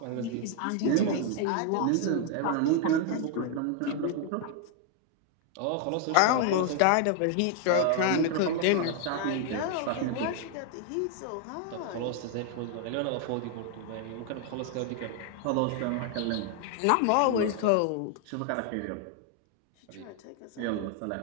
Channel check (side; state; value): both; different; correlation 0.00